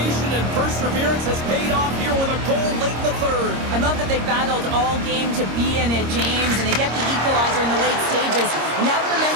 and perseverance has paid off here with a goal late in the third. I love that they battled all game to be in it, James, and they get the equalizer in the late stages. And now the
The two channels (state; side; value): late; left; 26 ms